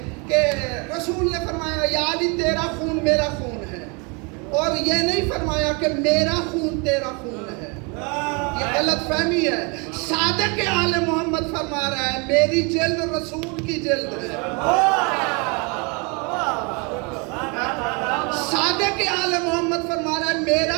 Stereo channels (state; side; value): quieter; left; 31.7 dB